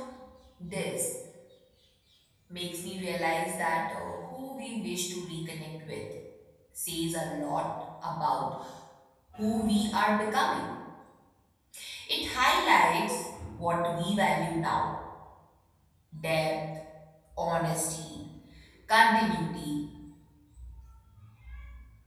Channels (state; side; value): identical; both; correlation 1.00